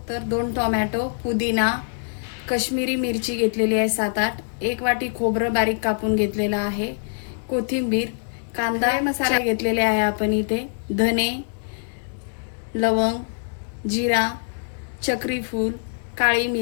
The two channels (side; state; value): right; silent; digital silence